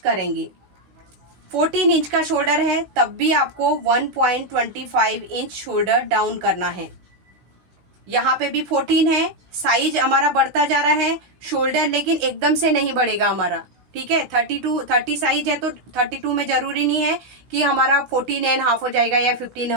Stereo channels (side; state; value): left; late; 16 ms